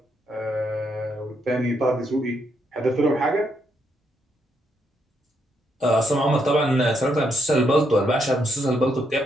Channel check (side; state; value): both; normal; correlation 0.77